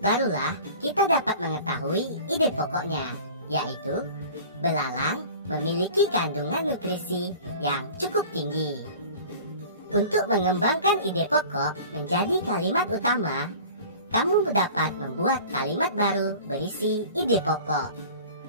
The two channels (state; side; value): inverted; both; correlation -0.42